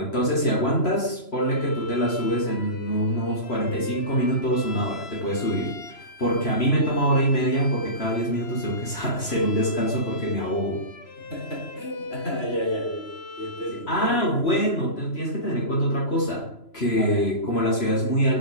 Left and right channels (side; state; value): right; late; 3.0 ms